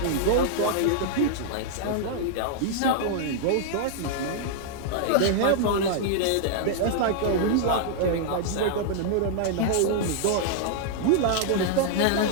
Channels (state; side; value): different; both; correlation -0.01